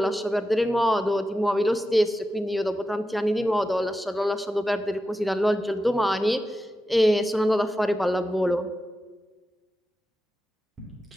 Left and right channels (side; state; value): both; normal; correlation 0.91